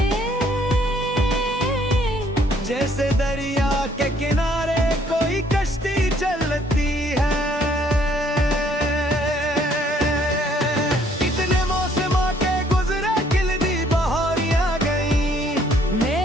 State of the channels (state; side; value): normal; both; correlation 0.64